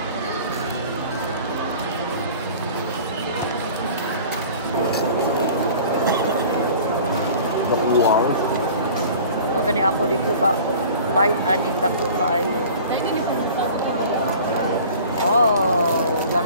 Wow. Magani ako di ko ka bite aning dako kaayo. Oh,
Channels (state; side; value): inverted; both; correlation -0.44